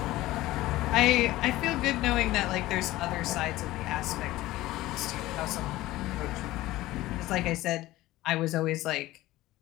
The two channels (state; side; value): quieter; right; 17.0 dB